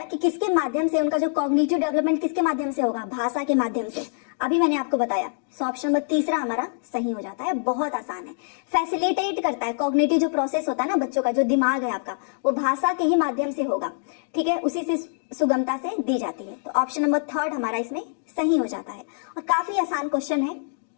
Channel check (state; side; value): silent; right; digital silence